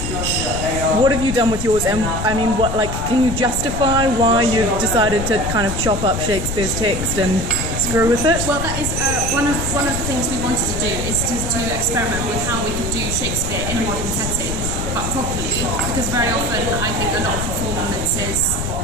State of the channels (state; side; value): noise; left; rumble, 4 dB below the sound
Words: have you done with yours? And I mean, can you justify why you decided to kind of chop up Shakespeare's text and screw with it? Well, that is one of the things we wanted to do is to experiment with how we could do Shakespeare in a modern setting, but properly. Because very often I think a lot of performances